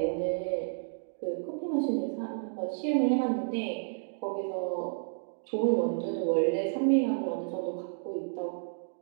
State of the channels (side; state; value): left; silent; digital silence